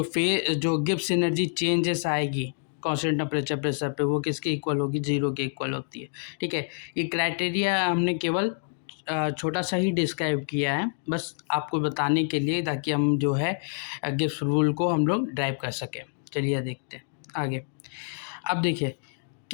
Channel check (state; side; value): silent; right; digital silence